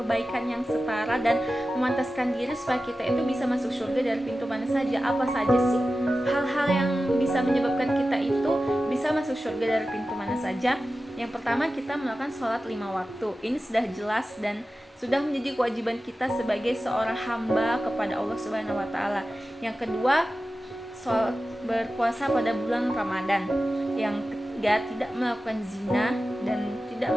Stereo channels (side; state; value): both; normal; correlation 0.94